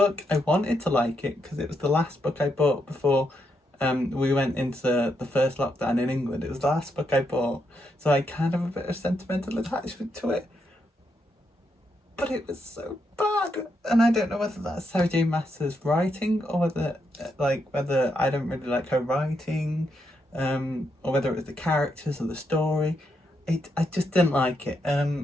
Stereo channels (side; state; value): both; normal; correlation 0.80